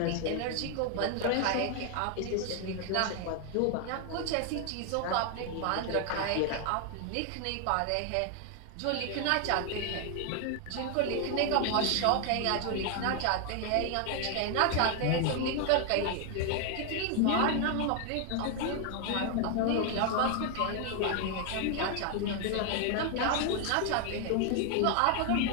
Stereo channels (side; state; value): both; different; correlation 0.00